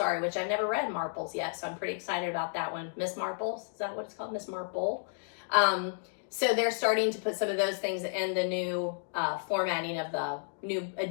which I've never read Marples yet, so I'm pretty excited about that one. Miss Marples, is that what it's called? Miss Marple. So they're starting to put some of those things in the new formatting of the new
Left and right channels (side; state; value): right; silent; digital silence